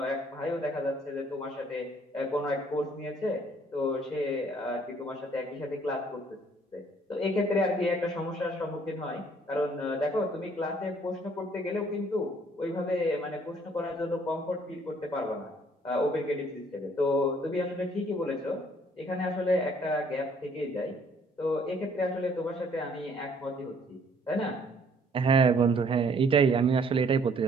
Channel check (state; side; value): normal; both; correlation 0.61